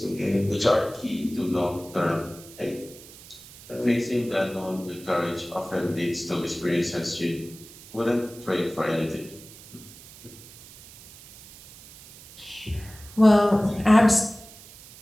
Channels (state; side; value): noise; right; hiss, 19 dB below the sound